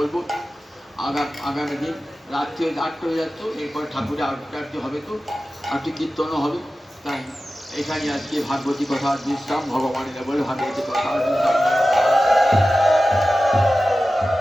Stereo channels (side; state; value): both; normal; correlation 0.94